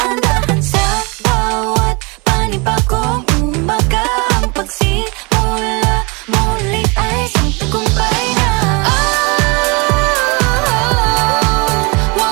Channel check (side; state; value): left; quieter; 28.7 dB